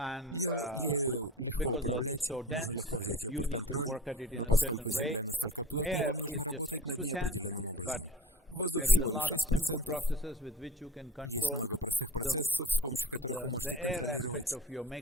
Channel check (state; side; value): normal; both; correlation 0.38